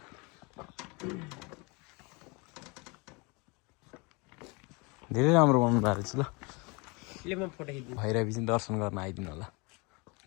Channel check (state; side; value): quieter; right; 28.7 dB